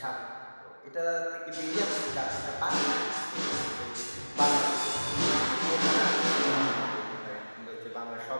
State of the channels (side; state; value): both; inverted; correlation -1.00